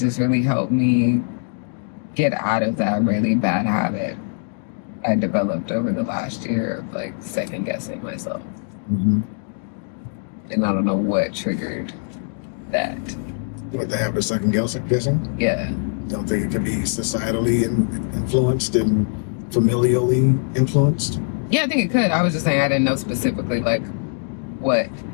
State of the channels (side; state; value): right; silent; digital silence